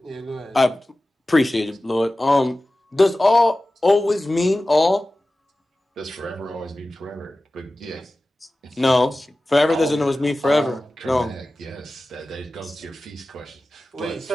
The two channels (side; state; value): both; normal; correlation 0.96